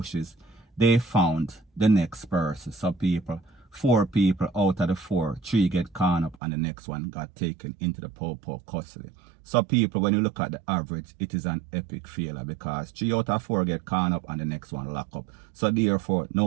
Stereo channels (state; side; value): drops out; left; at 6.4 s